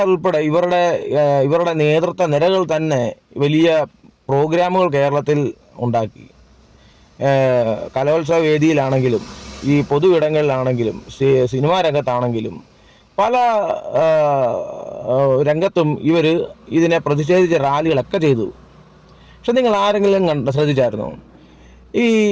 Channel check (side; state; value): both; identical; correlation 1.00